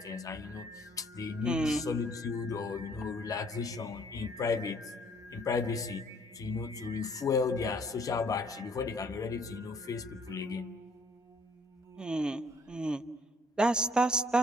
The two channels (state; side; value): normal; both; correlation 0.60